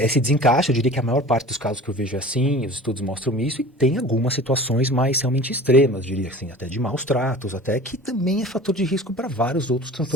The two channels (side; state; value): both; normal; correlation 0.40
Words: desencaixe, eu diria que a maior parte dos casos que eu vejo é assim, os estudos mostram isso, e tem algumas situações mais realmente extremas, diria assim, até de maus tratos, até que também é fator de risco para vários outros